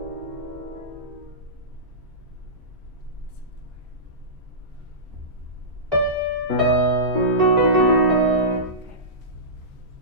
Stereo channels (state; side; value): late; left; 1.8 ms